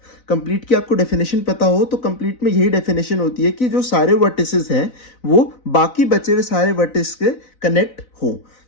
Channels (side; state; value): right; late; 4.0 ms